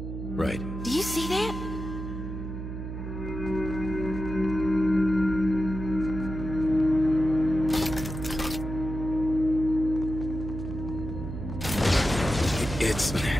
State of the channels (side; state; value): right; noise; hum, 7 dB below the sound